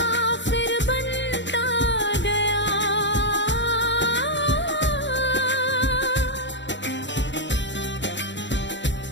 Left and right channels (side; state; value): right; late; 0.53 ms